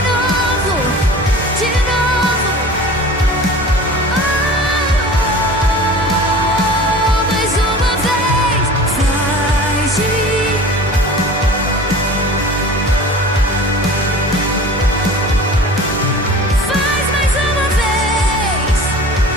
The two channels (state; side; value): normal; both; correlation 0.39